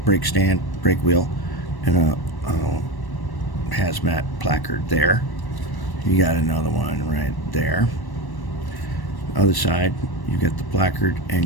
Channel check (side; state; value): right; late; 1.1 ms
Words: brake stand, brake wheel, and a hazmat placard there. You got another one right there. Other side, you got the placard